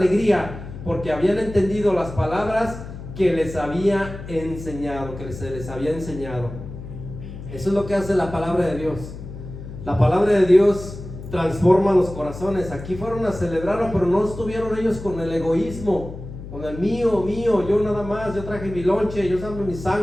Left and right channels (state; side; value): noise; left; hum, 11 dB below the sound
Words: porque habían entendido las palabras que les había enseñado, se les había enseñado. Eso es lo que hace la palabra de Dios. La palabra de Dios transforma los corazones. Aquí fueron a celebrarlo, pero no estuvieron ellos con el egoísmo, con el mío, yo nada más, yo traje mi lonche, yo traje mi